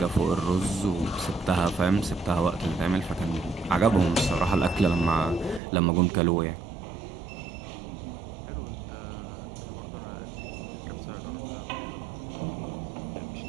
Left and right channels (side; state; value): left; drops out; at 5.6 s